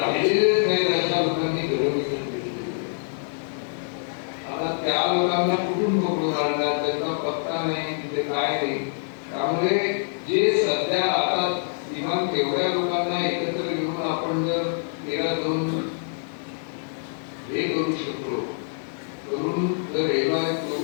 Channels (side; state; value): right; silent; 62 dB below the other